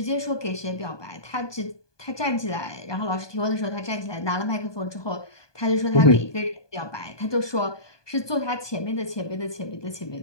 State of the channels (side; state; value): right; late; 1.2 ms